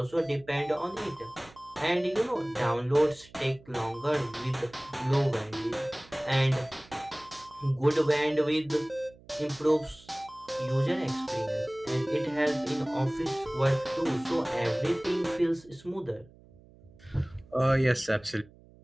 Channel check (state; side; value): noise; right; hum, 24 dB below the sound